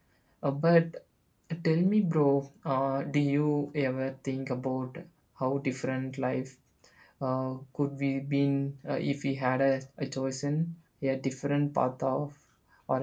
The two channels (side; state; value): both; identical; correlation 1.00